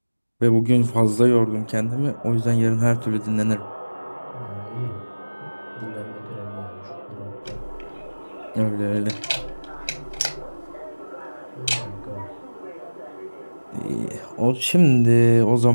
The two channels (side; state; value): both; inverted; correlation -1.00